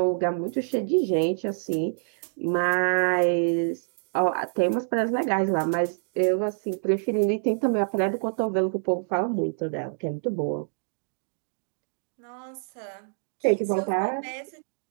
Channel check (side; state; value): left; silent; digital silence